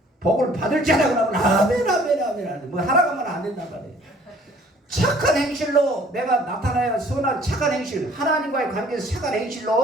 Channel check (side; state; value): both; normal; correlation 0.56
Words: 복을 받을 줄 알고 나면 아멘. 뭐 하라고 하면 안 된단 말이에요. 착한 행실로 내가 나타나야 선한 착한 행실 하나님과의 관계에서 착한